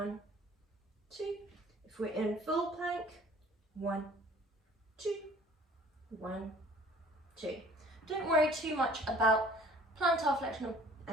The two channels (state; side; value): normal; both; correlation 0.52